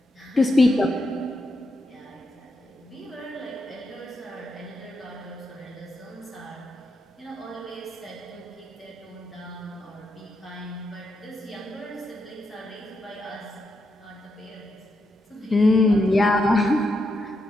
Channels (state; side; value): normal; both; correlation 0.83